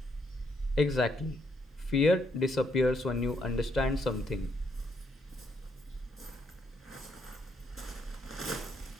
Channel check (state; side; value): normal; both; correlation 0.74